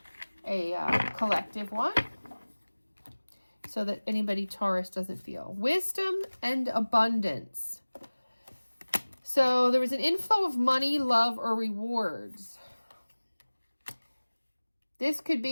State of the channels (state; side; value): inverted; both; correlation -1.00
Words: collective one so that anybody Taurus doesn't feel. Wisdom and abundance. So there was an inflow of money, love, or rewards. This could